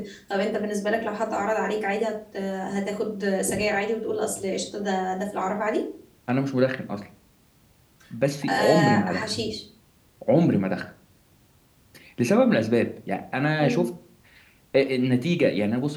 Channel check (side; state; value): both; identical; correlation 1.00